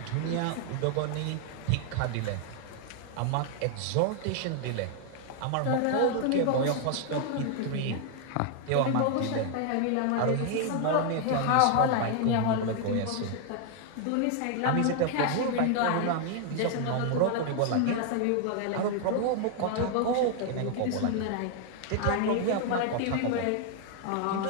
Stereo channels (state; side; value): different; both; correlation 0.00